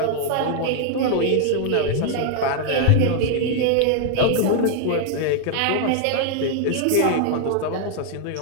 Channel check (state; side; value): different; both; correlation 0.00